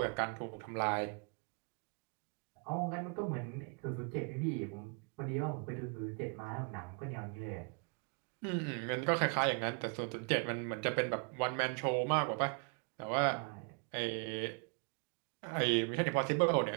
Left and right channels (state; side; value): quieter; left; 37.3 dB